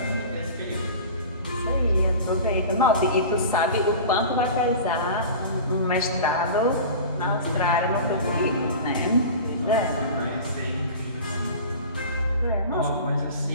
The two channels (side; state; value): both; inverted; correlation -0.36